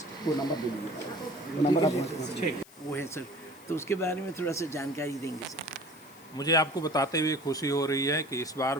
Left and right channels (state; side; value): noise; left; hiss, 23 dB below the sound